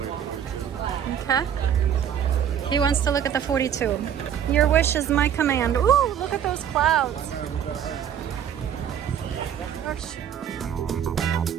Okay. He wants to look at the 42. Your wish is my command. Ooh, look at those clouds. Gosh.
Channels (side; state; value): left; quieter; 9.1 dB